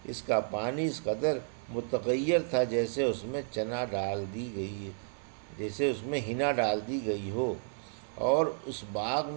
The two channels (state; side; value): silent; left; digital silence